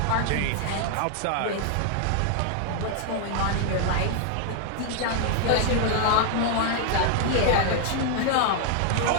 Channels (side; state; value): both; different; correlation 0.00